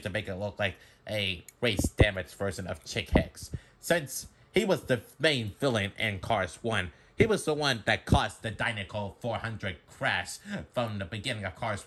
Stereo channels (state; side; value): identical; both; correlation 1.00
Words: to make it look like a race damage version of Chick Hicks. Since he was the main villain in Cars 1, he was the one that caused the Dynaco 400 crash from the beginning of